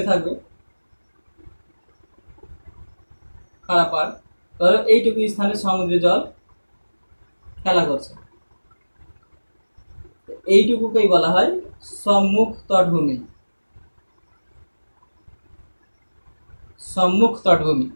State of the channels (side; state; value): both; inverted; correlation -1.00